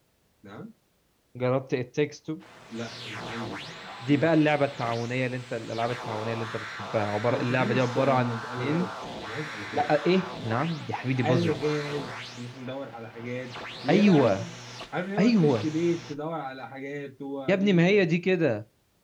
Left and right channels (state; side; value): identical; both; correlation 1.00